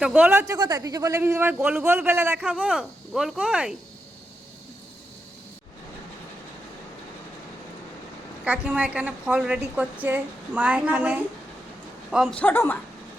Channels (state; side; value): normal; both; correlation 0.85